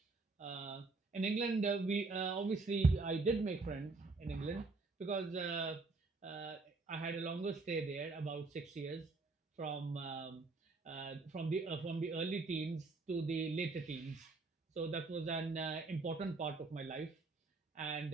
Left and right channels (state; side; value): quieter; left; 3.7 dB